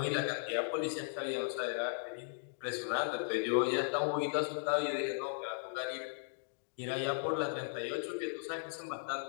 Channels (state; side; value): silent; right; digital silence